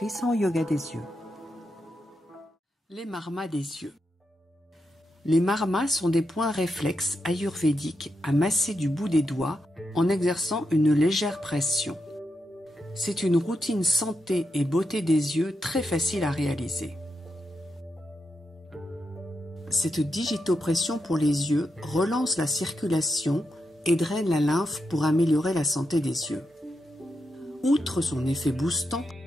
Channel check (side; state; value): both; normal; correlation 0.85